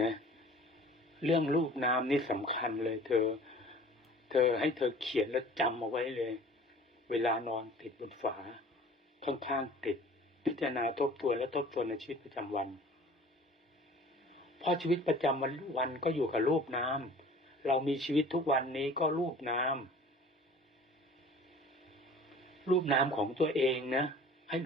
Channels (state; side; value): normal; both; correlation 0.46